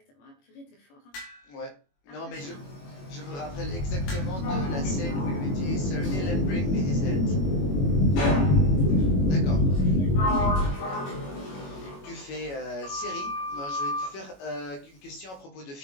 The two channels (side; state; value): right; late; 21 ms